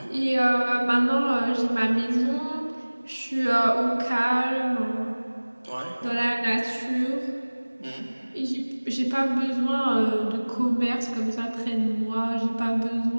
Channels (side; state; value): both; inverted; correlation -1.00